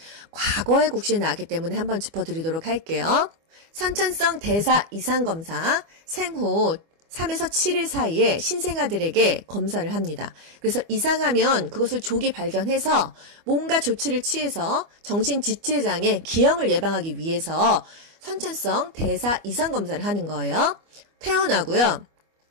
과거의 국시에 나왔기 때문에 한번 짚어드리도록 할게요. 선천성 대사 이상 검사 생후 3에서 7일 사이에 신생아들에게 검사를 합니다. 그래서 이상하면 그것을 조기 발견해서 뭔가 조치를 취해서 정신지체장애, 기형을 예방하기 위해서 선천성 대사 이상 검사를 하는 거예요. 태어나고요.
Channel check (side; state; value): left; late; 25 ms